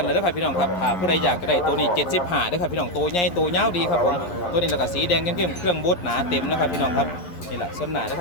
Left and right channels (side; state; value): right; late; 11 ms